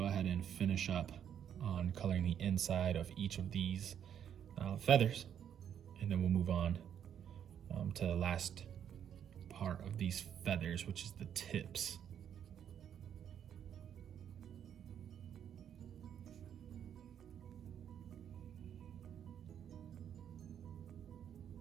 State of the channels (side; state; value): left; quieter; 9.1 dB